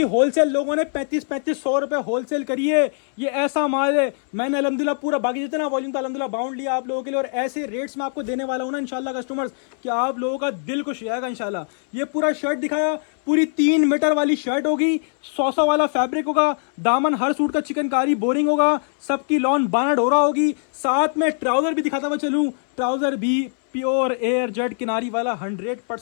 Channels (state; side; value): silent; right; 64 dB below the other